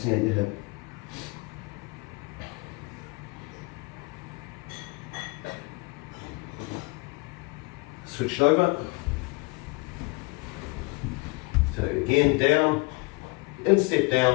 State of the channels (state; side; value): quieter; right; 26.1 dB